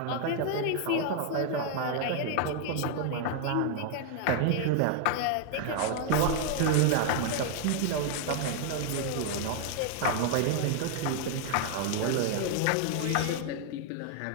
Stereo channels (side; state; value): both; different; correlation 0.00